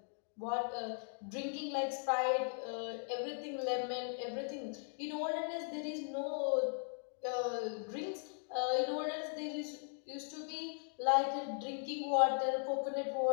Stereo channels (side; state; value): right; silent; 52 dB below the other